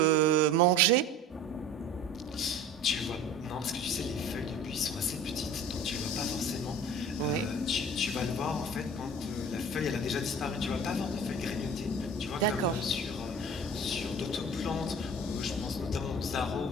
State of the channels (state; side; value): normal; both; correlation 0.41